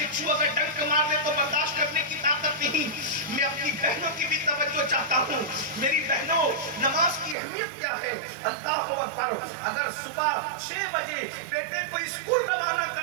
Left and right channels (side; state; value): left; drops out; at 7.4 s